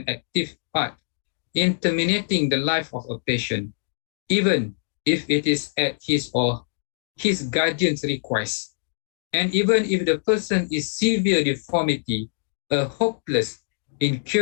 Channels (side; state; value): right; silent; digital silence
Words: active part in terminating the life of a patient, even if it is at his or his guardian's request, and even if the person is severe deformity, a hopeless,